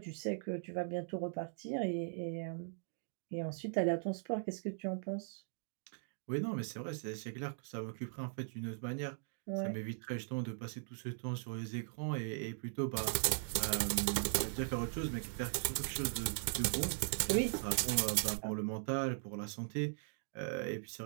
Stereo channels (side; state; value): left; silent; digital silence